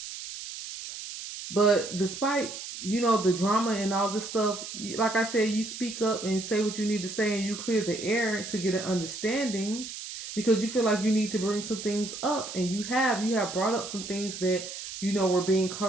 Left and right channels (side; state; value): right; noise; hiss, 9 dB below the sound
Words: But despite, the drama and all this stuff, like I said, you speak up and say what you need to say, and you clear the air to get an understanding, because you feel like you need to bring some things up, and you have brought up some things that were being